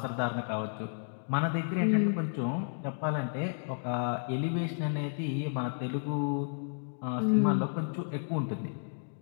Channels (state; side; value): silent; right; digital silence